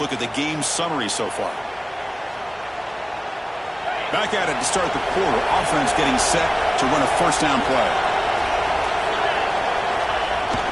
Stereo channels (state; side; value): identical; both; correlation 1.00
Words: at the game summary so far. Back at it to start the quarter. Offense getting set to run a 1st down play.